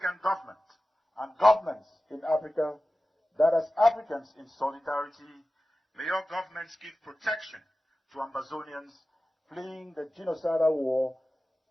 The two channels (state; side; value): normal; both; correlation 0.95